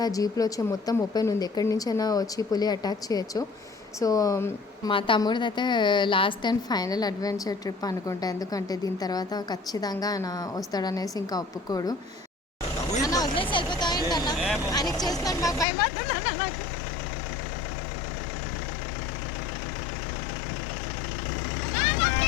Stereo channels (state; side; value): drops out; right; at 15.7 s